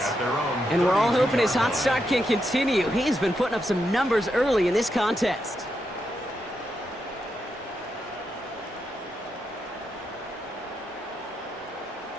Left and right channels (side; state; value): both; normal; correlation 0.83